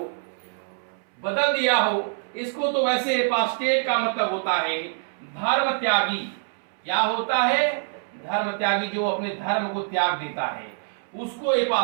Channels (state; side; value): silent; left; 62 dB below the other